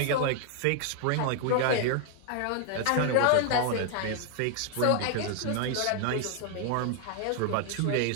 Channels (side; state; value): both; different; correlation 0.00